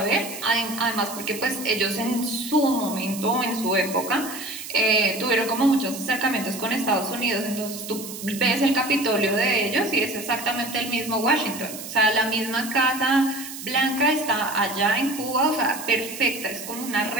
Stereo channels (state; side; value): noise; right; hiss, 11 dB below the sound